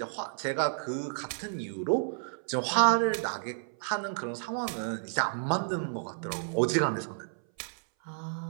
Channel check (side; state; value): left; silent; 57 dB below the other